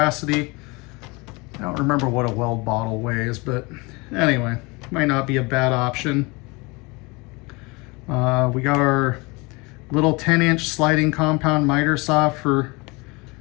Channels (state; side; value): quieter; right; 26.4 dB